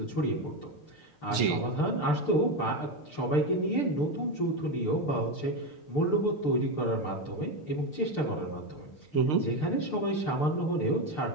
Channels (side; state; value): right; late; 6.7 ms